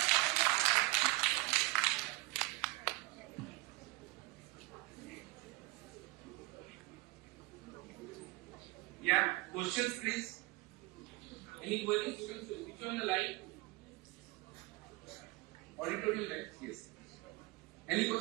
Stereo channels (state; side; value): quieter; left; 21.8 dB